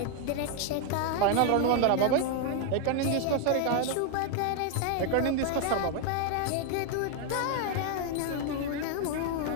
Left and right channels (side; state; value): both; different; correlation 0.00